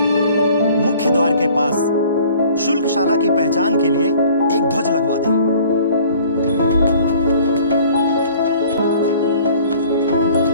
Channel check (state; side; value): inverted; both; correlation -0.51